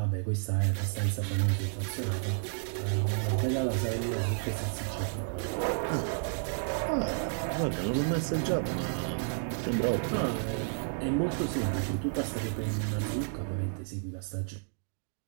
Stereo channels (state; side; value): silent; left; digital silence